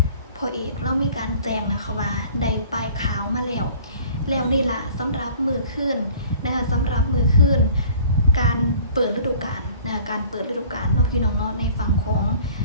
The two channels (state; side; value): inverted; both; correlation -0.50